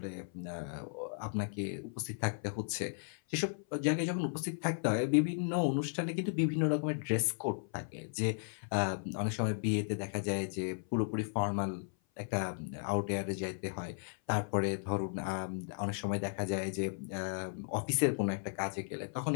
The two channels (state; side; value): silent; right; 54 dB below the other